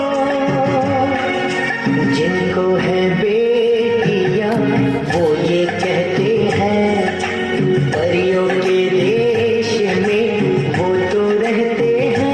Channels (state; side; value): identical; both; correlation 1.00